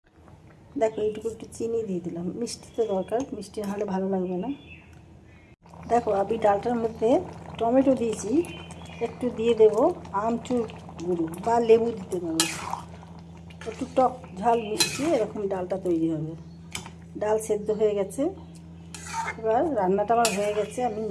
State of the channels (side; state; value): both; identical; correlation 1.00